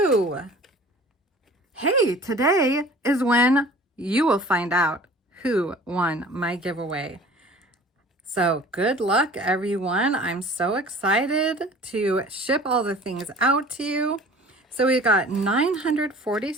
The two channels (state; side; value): normal; both; correlation 0.46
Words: Hey, today is when you will find out who won my giveaway. So good luck, everyone. I'm so excited to ship all the things out to you. So we got